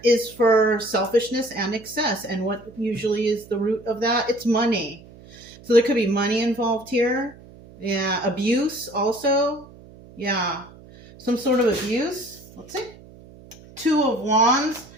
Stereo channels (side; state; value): right; noise; hum, 21 dB below the sound